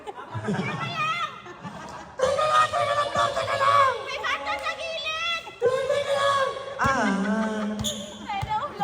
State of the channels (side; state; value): both; identical; correlation 1.00